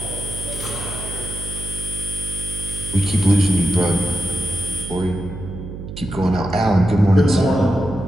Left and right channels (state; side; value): noise; right; hum, 10 dB below the sound